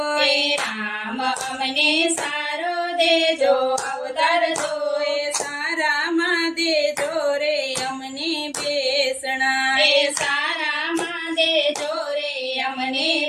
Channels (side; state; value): both; identical; correlation 1.00